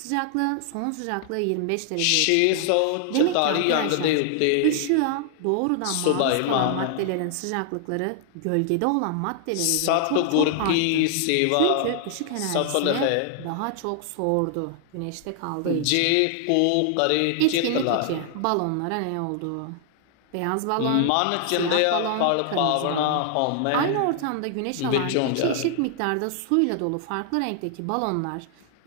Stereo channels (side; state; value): both; different; correlation 0.00